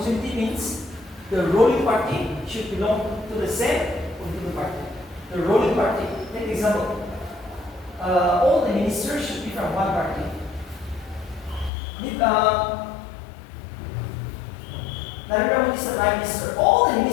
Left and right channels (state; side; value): drops out; right; at 11.7 s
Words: means the ruling party should belong to the same political party. The ruling party. Take example. All the ministers should be from one party. Narendra Modi is the Prime Minister.